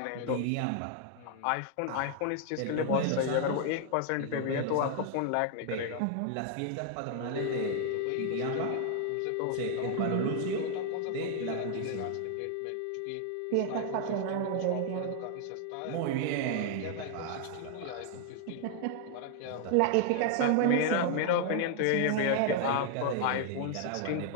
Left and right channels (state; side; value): different; both; correlation 0.00